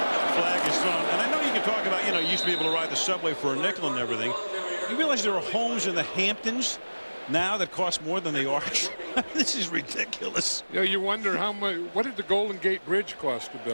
flag is thrown. And I know you can talk about, you used to be able to ride the subway for a nickel and everything. You realize there are homes in the Hamptons now that cost more than the Arch? This is ridiculous. You wonder how much, what did the Golden Gate Bridge cost to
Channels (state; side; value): inverted; both; correlation -1.00